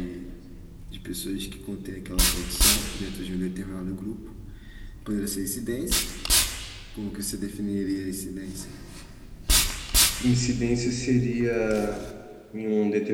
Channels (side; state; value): both; identical; correlation 1.00